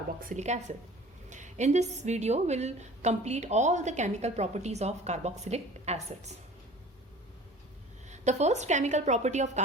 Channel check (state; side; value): normal; both; correlation 0.45